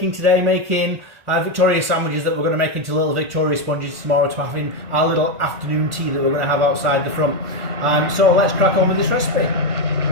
today, making Victoria sandwiches that we're going to make into little Victoria sponges tomorrow to having our little afternoon tea that we're going to have outside the front. So let's crack on with this recipe.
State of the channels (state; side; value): late; left; 1.5 ms